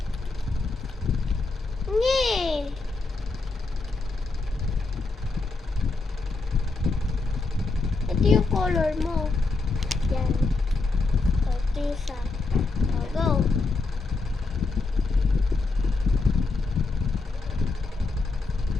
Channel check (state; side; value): quieter; right; 3.7 dB